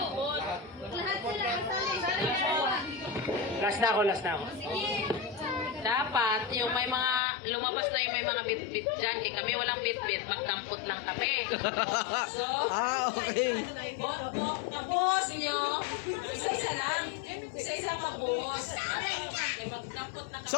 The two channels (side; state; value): right; drops out; at 7.2 s